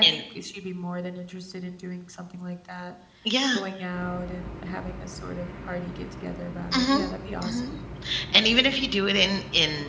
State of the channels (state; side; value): identical; both; correlation 1.00